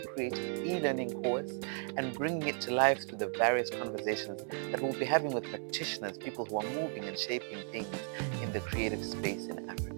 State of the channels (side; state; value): left; silent; 54 dB below the other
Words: e-learning course and bringing it to life through the various conversations that we'll be having with practitioners, people who are moving and shaping things in the creative space in